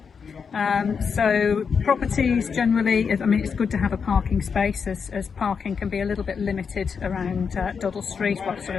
So properties generally, I mean, it's good to have a parking space, as parking can be a little bit limited around Duddle Street, or sort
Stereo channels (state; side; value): quieter; right; 6.1 dB